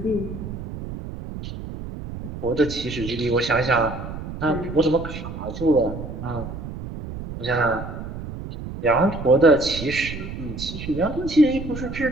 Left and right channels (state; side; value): noise; right; rumble, 9 dB below the sound